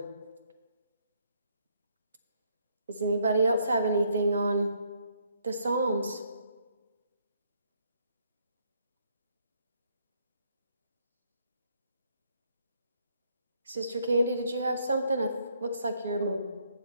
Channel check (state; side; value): inverted; both; correlation -0.70